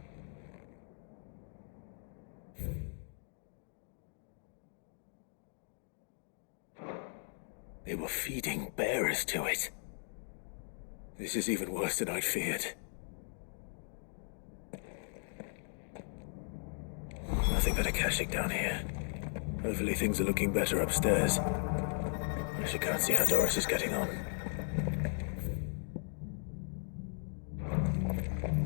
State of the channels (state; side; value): silent; right; 53 dB below the other